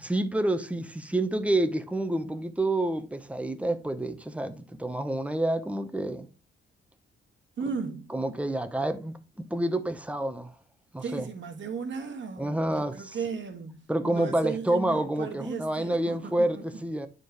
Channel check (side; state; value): both; normal; correlation 0.86